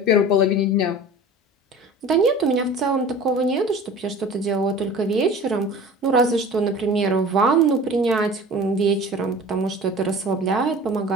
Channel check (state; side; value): normal; both; correlation 0.40